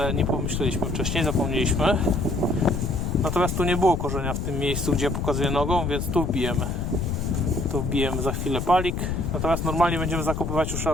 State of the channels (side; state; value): left; noise; rumble, 2 dB below the sound